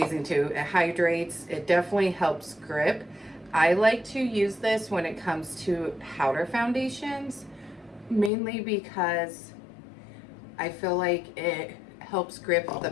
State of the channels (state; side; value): drops out; right; at 8.3 s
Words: too. It hydrates. It definitely helps grip. I like to use this when it comes to powder foundations, mainly because I feel like it helps grip the